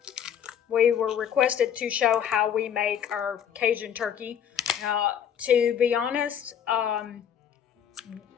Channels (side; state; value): right; quieter; 8.8 dB